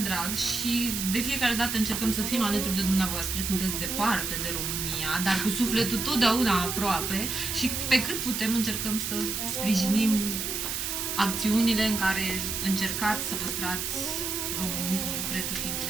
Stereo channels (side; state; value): right; noise; hiss, 2 dB below the sound